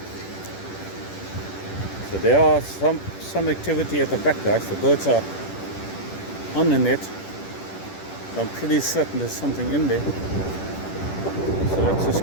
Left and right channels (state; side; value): late; right; 10 ms